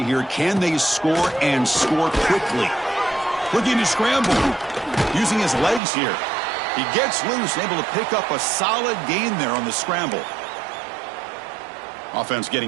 here. Can they score and score quickly? Looking to scramble. Using his legs here. He gets loose and able to pick up a solid gain there on the scramble. Offense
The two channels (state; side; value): drops out; left; at 5.8 s